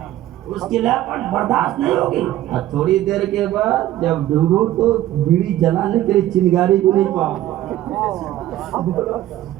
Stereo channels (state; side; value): quieter; left; 13.9 dB